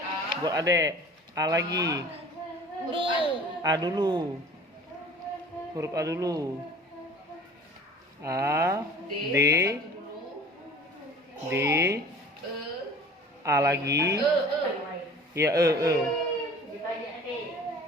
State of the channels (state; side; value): normal; both; correlation 0.45